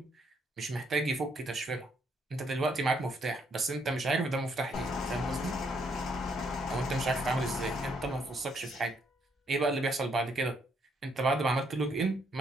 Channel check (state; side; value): normal; both; correlation 0.72